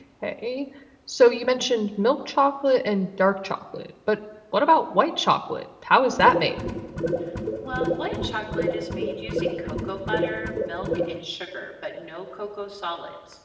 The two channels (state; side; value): identical; both; correlation 1.00